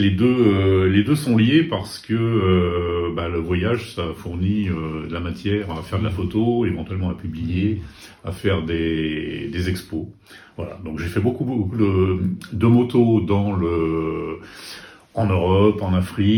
deux sont liés parce que le voyage ça fournit de la matière à faire de la photo, éventuellement à publier, à faire des expos. Voilà, donc j'ai fait beaucoup de motos en Europe, en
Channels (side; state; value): both; identical; correlation 1.00